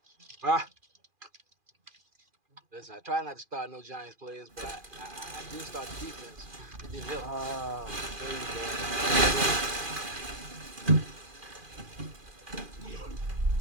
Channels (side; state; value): left; late; 2.4 ms